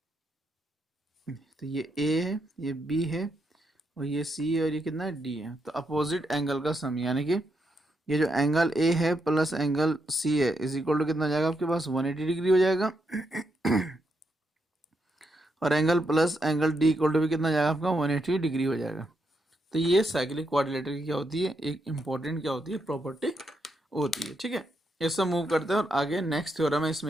तो ये A है, ये B है, और ये C है, और ये कितना है, D है। तो अपोजिट एंगल का सम, यानी कि ये जो एंगल A है प्लस एंगल C है इज इक्वल टू कितना हो जाएगा आपके पास, 180 डिग्री हो जाएगा। और angle plus angle D equal to भी कितना हो जाएगा आपका, 180 डिग्री हो जाएगा। तो ये साइक्लिक कोऑर्डिनेटर की क्या होती है, एक इंपॉर्टेंट क्या होती है, प्रॉपर्टी होती है। ठीक है। इससे मूव करते हैं और आगे नेक्स्ट थ्योरम है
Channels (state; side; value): normal; both; correlation 0.81